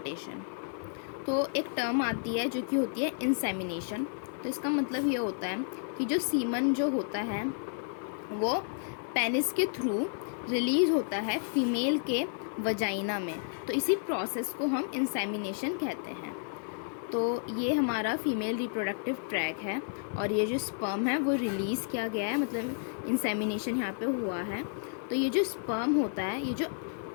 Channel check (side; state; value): right; silent; digital silence